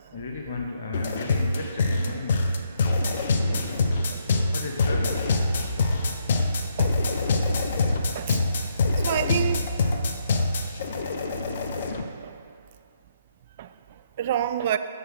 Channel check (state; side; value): inverted; both; correlation -0.75